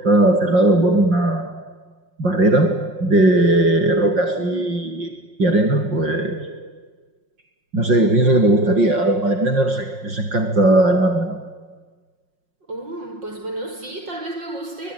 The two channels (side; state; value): left; late; 5.5 ms